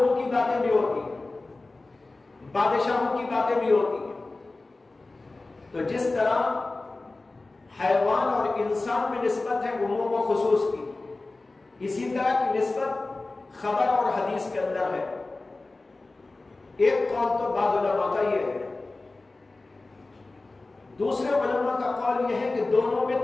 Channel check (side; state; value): right; quieter; 3.3 dB